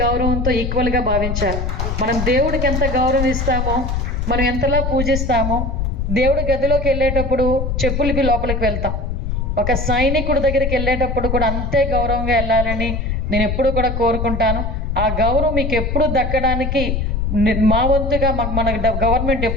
గౌరవంతో ఈక్వల్గా భావించాలి. మనం దేవుడికి ఎంత గౌరవం ఇస్తామో, మనం ఎంతలా పూజిస్తామో, దేవుడి గదిలోకి వెళ్ళేటప్పుడు చెప్పులకి లోపలికి వెళ్తాం, ఒక సైనికుడి దగ్గరికి వెళ్ళేటప్పుడు కూడా అంతే గౌరవంగా వెళ్ళాలని నేను ఎప్పుడు కూడా కోరుకుంటాను. ఆ గౌరవం మీకు ఎప్పుడు దక్కడానికి మా వంతుగా మన గవర్నమెంట్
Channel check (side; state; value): left; noise; rumble, 1 dB below the sound